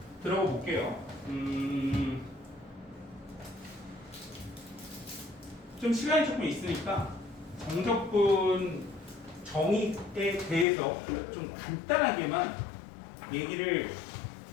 들어가 볼게요. 좀 시간이 조금 있으니까 정적분 정의에 대해서 좀 간단하게만 얘기를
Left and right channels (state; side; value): drops out; right; at 10.7 s